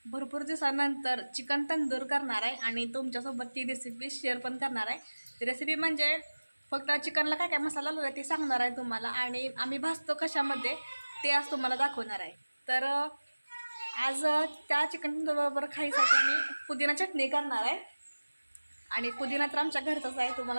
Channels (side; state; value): both; inverted; correlation -1.00